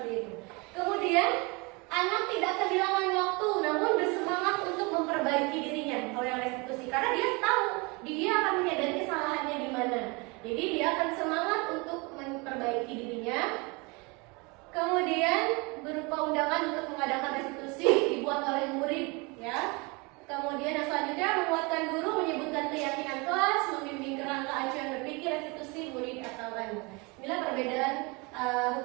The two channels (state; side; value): quieter; left; 28.1 dB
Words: itu. Kemudian anak tidak kehilangan waktu, namun bersemangat untuk memperbaiki dirinya. Kalau yang restitusi, karena dia tahu dia akan menyadari kesalahannya di mana. Jadi dia akan semangat untuk memperbaiki dirinya. Kemudian berupa undangan untuk mengadakan restitusi dibuat oleh murid, ya. Kemudian yang selanjutnya menguatkan guru, menyebutkan keyakinan kelas, membimbing kerangka acuan berpikir restitusi murid atau anak. Inilah perbedaan